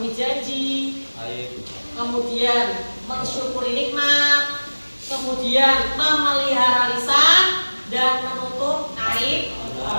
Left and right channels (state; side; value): inverted; both; correlation -1.00